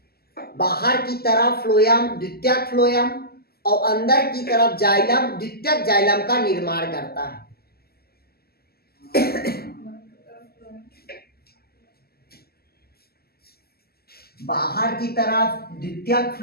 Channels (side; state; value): right; late; 0.45 ms